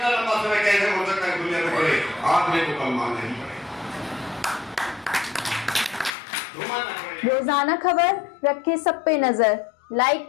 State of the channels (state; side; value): drops out; right; at 6.1 s